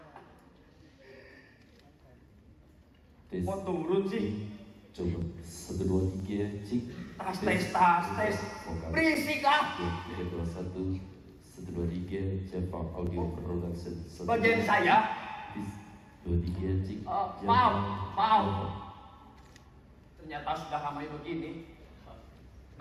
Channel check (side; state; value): both; identical; correlation 1.00